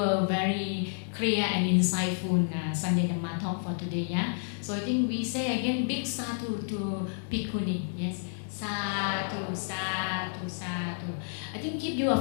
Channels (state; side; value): silent; right; digital silence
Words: very clear and insightful Sunday Dhamma talk for today. Yeah. So I think we say again big sadhu to Bhikkhuni. Yes. Sadhu, sadhu, sadhu. I think give you